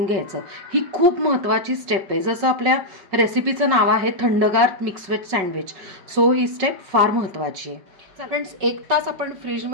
घ्यायचं. ही खूप महत्त्वाची स्टेप आहे. जसं आपल्या रेसिपीचं नाव आहे थंडगार मिक्स व्हेज सँडविच, सो ही स्टेप फार महत्त्वाची आहे. फ्रेंड्स, 1 तास आपण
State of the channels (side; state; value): left; late; 5.3 ms